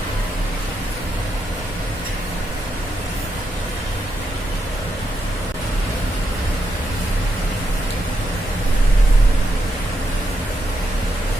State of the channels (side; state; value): both; normal; correlation 0.82